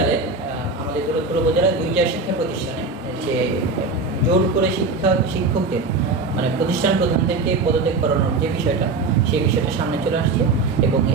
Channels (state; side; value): quieter; left; 3.8 dB